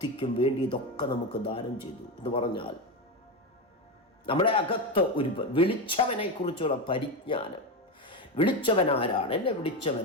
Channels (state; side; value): normal; both; correlation 0.15